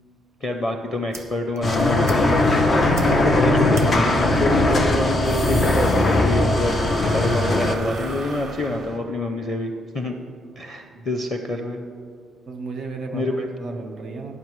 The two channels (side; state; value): both; normal; correlation 0.75